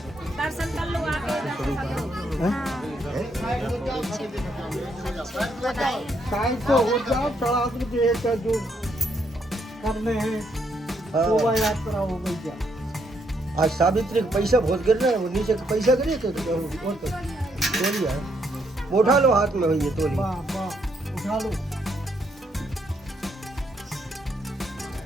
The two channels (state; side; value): normal; both; correlation 0.74